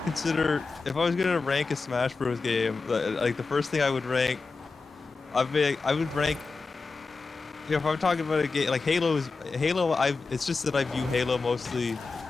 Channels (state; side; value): quieter; right; 4.1 dB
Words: consider if I was gonna rank a Smash Bros. Game. Like the first thing I would rank, I would rank. You know, if I'm talking about a game like Halo, it's just that I view Halo mostly